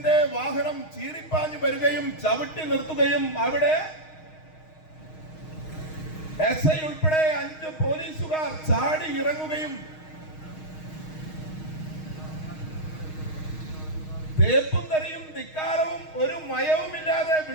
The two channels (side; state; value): right; late; 6.4 ms